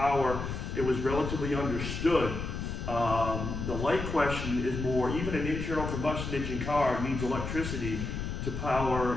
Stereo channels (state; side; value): noise; left; rumble, 5 dB below the sound